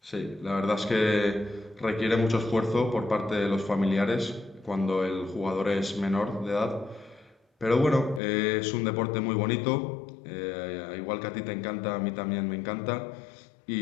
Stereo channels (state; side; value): drops out; right; at 8.2 s